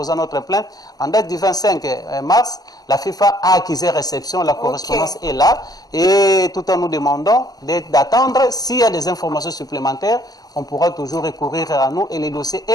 notre plainte, en date du 25 mars, la FIFA a accusé réception, la correspondance est là, et tout en nous demandant d'attendre, s'il y a des informations supplémentaires, on pourra toujours recourir à nous et les dossiers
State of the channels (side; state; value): right; late; 0.18 ms